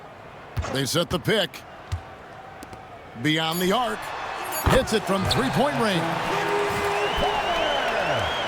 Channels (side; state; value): both; identical; correlation 1.00